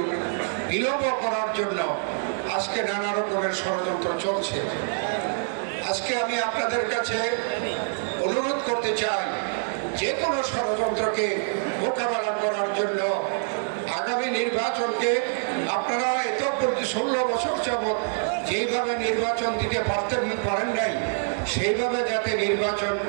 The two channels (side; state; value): left; silent; digital silence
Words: বিলম্ব করার জন্য আজকে নানা রকমের ষড়যন্ত্র চলছে। আজকে আমি আপনাদের কাছে অনুরোধ করতে চাই, যে কোনো ষড়যন্ত্রকে মোকাবেলা করার জন্য আগামী নির্বাচনকে আপনারা এত 16 বছর যাবৎ যেইভাবে নির্বাচন দিতে পারেন নাই, সেইভাবে যাতে নির্বাচন